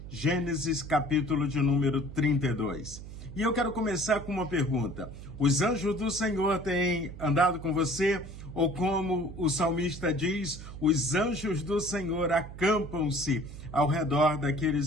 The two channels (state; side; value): noise; right; hum, 13 dB below the sound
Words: Gênesis capítulo de número 32. E eu quero começar com uma pergunta. Os anjos do Senhor têm andado com você? Ou como o salmista diz, os anjos do Senhor acampam-se ao redor